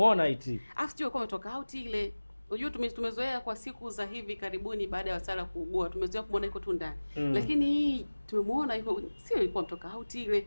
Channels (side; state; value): both; inverted; correlation -1.00